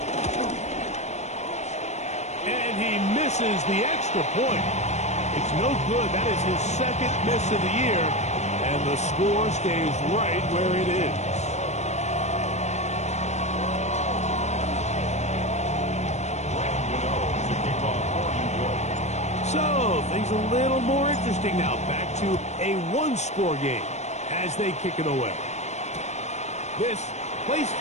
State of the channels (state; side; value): late; right; 0.33 ms